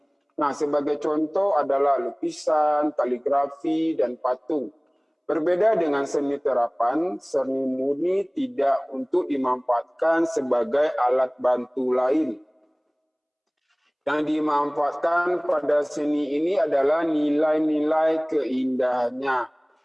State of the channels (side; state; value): both; identical; correlation 1.00